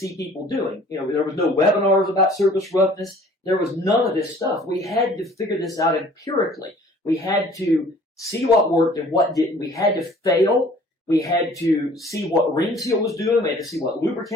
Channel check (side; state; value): both; normal; correlation 0.52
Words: people doing. There was no webinars about surface roughness. There was none of this stuff. We had to figure this out empirically. We had to see what worked and what didn't. We had to fail. We had to see what ring seal was doing. We had to see what